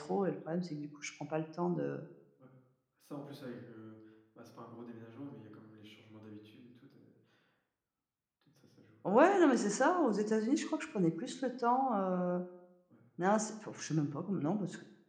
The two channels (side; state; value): both; identical; correlation 1.00